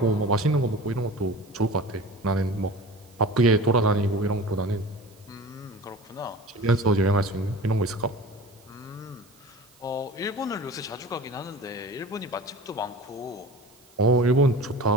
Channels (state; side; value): noise; right; hiss, 29 dB below the sound